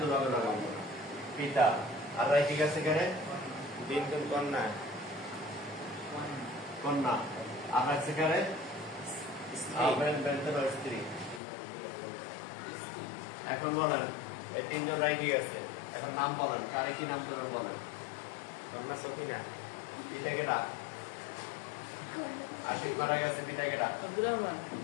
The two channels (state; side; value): drops out; right; at 11.4 s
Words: লগে লগে পিতা। আর রাইখে গেছে কারে? বিনতুল কন্যা। কন্যা। আর রাখছে কারে? স্ত্রী। এখন বলেন এই 3 জন রাইখে গেছে, এখন নাম বলেন, কারে কি নাম দেবেন বলেন? কন্যা সফিনা। পিতা কেডা? আশিক মারা গেছে, পিতা কেডা? আব্দুর রহমান।